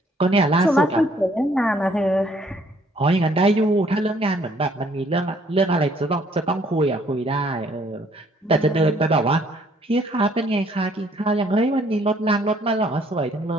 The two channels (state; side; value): normal; both; correlation 0.63